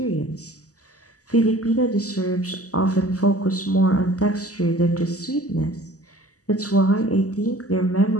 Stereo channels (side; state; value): right; late; 0.67 ms